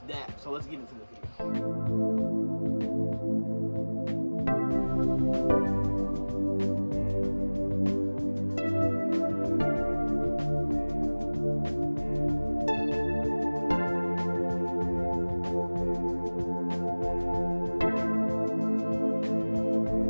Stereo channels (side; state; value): both; inverted; correlation -1.00